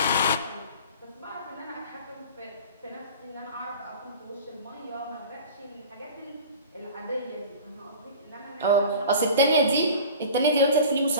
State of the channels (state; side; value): inverted; both; correlation -0.39